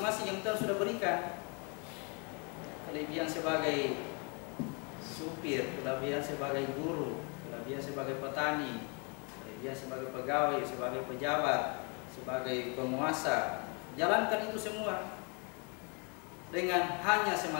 yang Tuhan sudah berikan. Kelebihan sebagai supir, kelebihan sebagai guru, kelebihan sebagai petani, kelebihan sebagai pegawai, sebagai pejabat, sebagai penguasa. Jalankan itu semua dengan hanya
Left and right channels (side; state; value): right; quieter; 34.6 dB